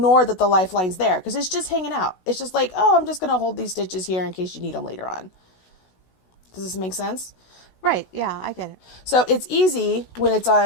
that the lifeline's there because it's just hanging out. It's just like, oh, I'm just going to hold these stitches here in case you need them later on. Does this make sense? Right. Yeah, I get it. So it's easy when it's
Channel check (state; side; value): late; right; 16 ms